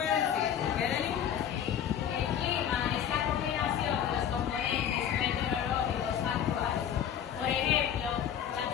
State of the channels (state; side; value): quieter; right; 9.2 dB